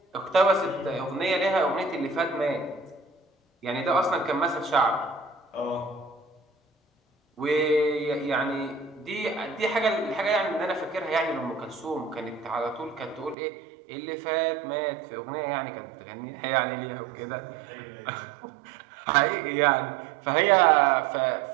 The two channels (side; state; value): left; drops out; at 13.4 s